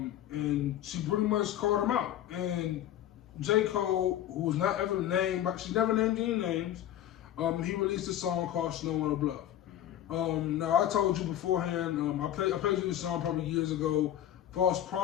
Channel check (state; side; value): quieter; right; 11.9 dB